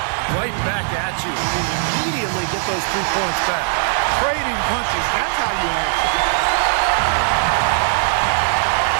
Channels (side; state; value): left; silent; digital silence